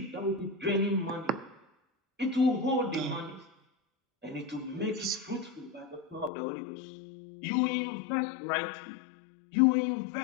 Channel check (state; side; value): drops out; right; at 6.3 s